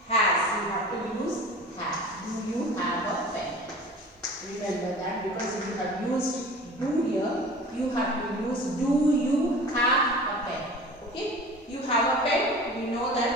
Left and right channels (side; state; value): both; normal; correlation 0.40